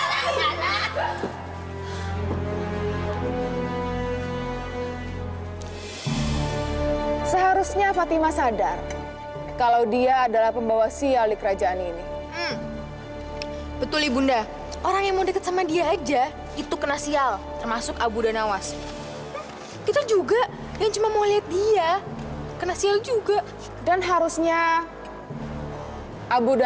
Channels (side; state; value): both; identical; correlation 1.00